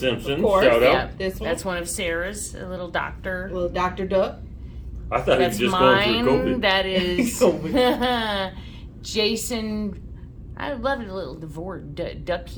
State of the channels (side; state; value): both; identical; correlation 1.00